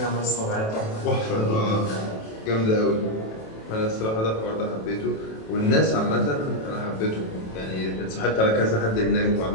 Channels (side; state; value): right; late; 27 ms